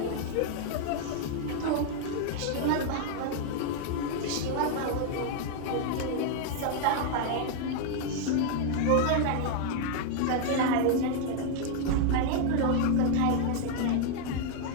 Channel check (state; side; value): different; both; correlation 0.00